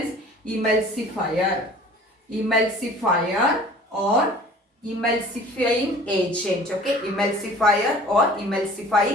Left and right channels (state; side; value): normal; both; correlation 0.47